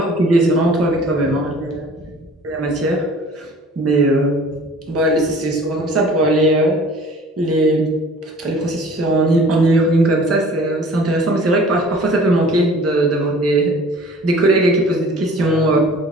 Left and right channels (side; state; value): both; normal; correlation 0.48